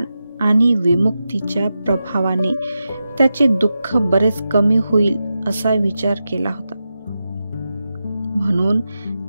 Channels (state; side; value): inverted; both; correlation -0.90